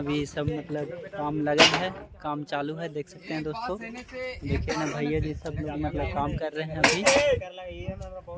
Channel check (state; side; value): identical; both; correlation 1.00